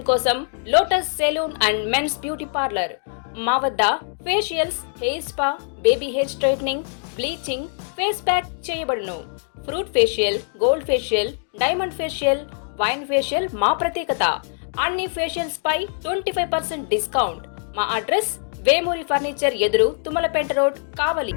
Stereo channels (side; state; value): right; silent; digital silence